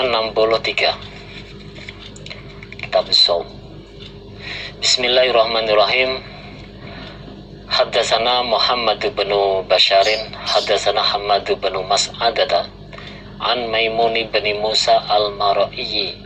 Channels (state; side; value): identical; both; correlation 1.00